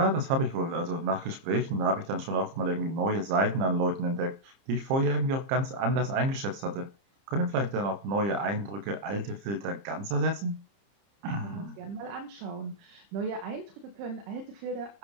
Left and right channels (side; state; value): left; late; 30 ms